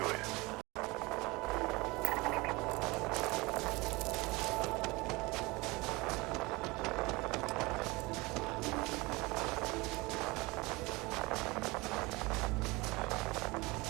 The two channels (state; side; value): quieter; left; 23.6 dB